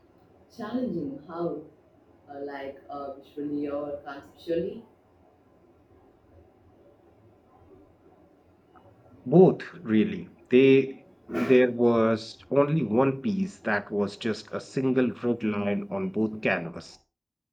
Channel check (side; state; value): both; identical; correlation 1.00